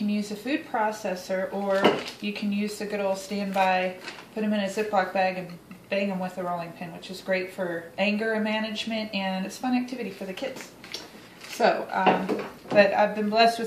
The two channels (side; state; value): both; identical; correlation 1.00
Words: use a food processor, or you can use the good old standby, put them in a Ziploc bag and bang them with a rolling pin, which is great for anger management, and it's a fun activity for the kids. So, but I've been blessed